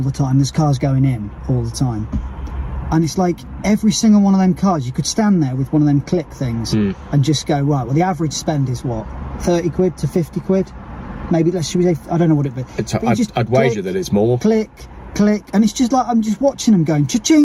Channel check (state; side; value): identical; both; correlation 1.00